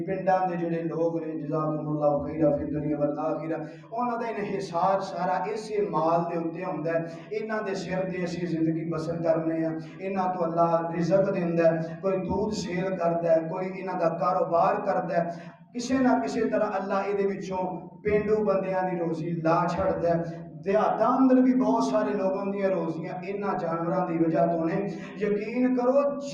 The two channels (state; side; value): identical; both; correlation 1.00